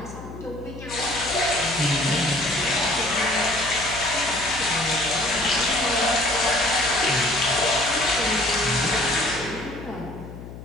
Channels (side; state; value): left; noise; hum, 13 dB below the sound